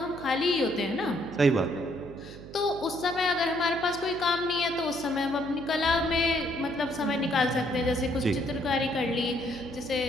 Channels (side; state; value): right; noise; hum, 15 dB below the sound